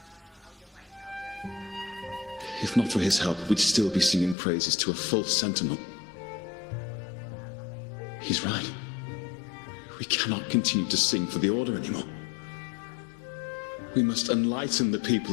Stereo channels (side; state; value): right; drops out; at 4.4 s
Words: If not for his help, we'd still be singing praises to a false sentinel. He's right. We cannot continue to sing for the Order anymore. We must enlighten the